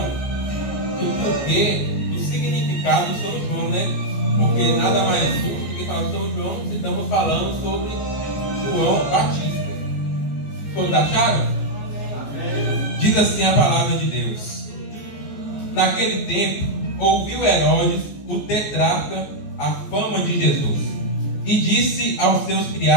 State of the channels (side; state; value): right; late; 14 ms